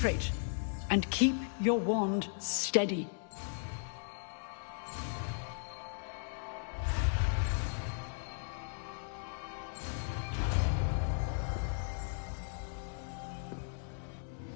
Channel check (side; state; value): right; silent; 53 dB below the other